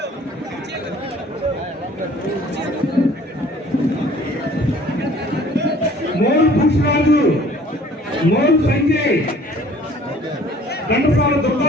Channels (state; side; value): normal; both; correlation 0.53